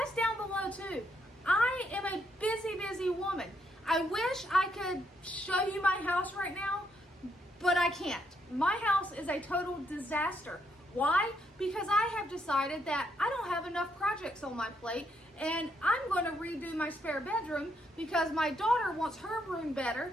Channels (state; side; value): normal; both; correlation 0.75